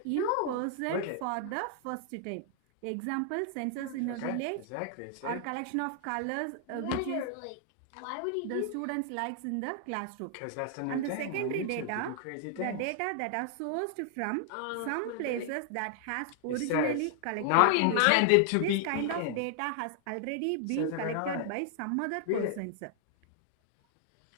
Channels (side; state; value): both; different; correlation 0.00